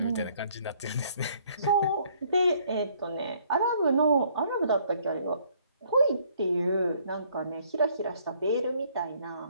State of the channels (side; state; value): both; inverted; correlation -0.64